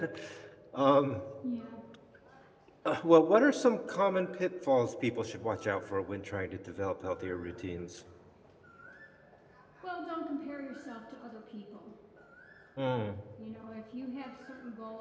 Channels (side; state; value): both; identical; correlation 1.00